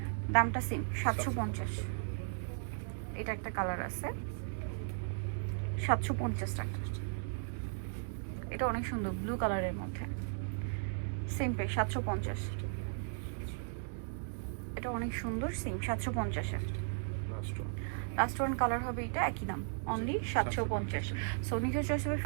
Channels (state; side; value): silent; left; digital silence